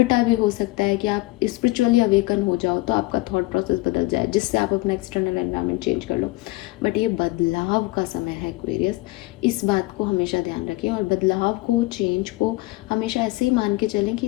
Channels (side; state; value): right; quieter; 20.2 dB